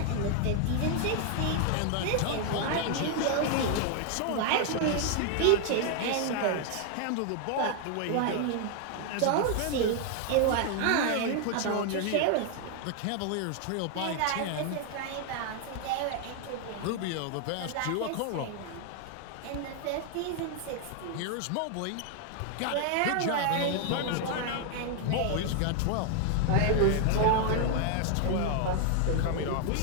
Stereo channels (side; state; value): both; different; correlation 0.00